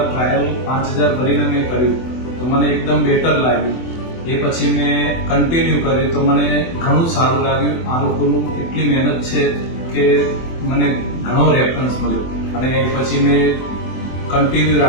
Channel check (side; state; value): right; late; 24 ms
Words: ટ્રાયલ 5000 ભરીને મેં કર્યું તો મને એકદમ બેટર લાગ્યું. એ પછી મેં કન્ટિન્યુ કર્યું તો મને ઘણું સારું લાગ્યું. આ લોકોનું એટલી મહેનત છે કે મને ઘણો રેફરન્સ મળ્યો અને એ પછી મેં કન્ટિન્યુ